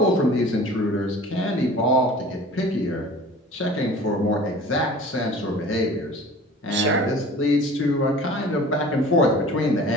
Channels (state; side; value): normal; both; correlation 0.43